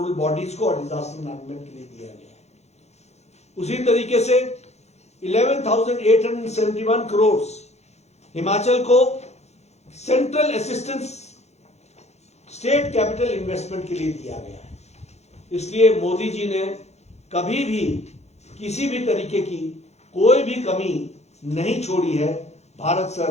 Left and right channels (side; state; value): right; late; 0.32 ms